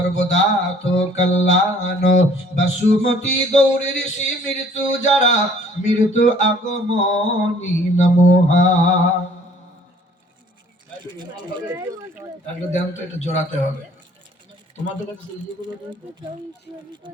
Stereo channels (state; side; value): normal; both; correlation 0.56